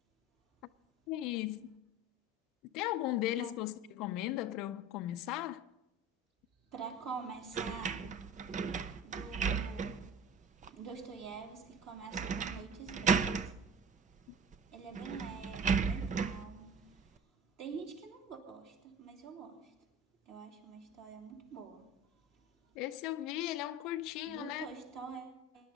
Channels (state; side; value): normal; both; correlation 0.36